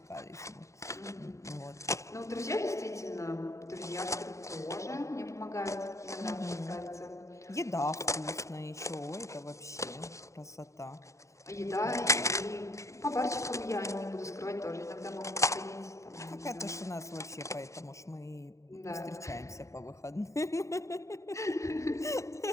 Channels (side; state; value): right; late; 0.15 ms